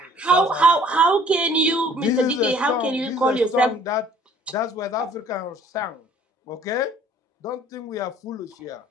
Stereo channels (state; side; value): normal; both; correlation 0.55